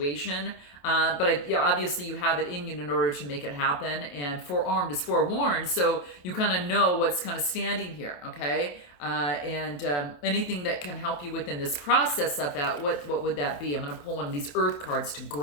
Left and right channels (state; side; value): late; right; 28 ms